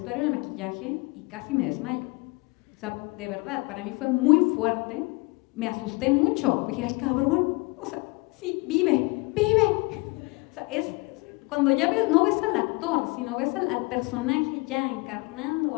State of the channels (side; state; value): right; quieter; 26.7 dB